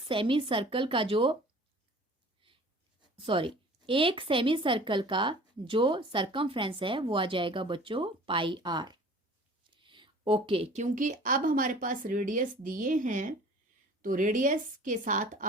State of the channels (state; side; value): normal; both; correlation 0.47